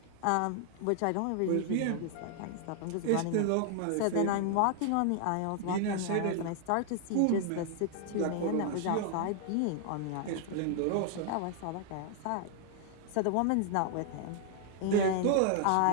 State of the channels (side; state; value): both; different; correlation 0.00